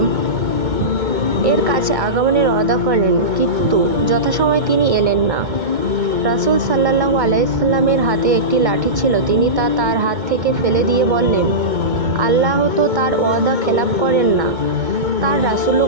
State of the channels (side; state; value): left; late; 2.2 ms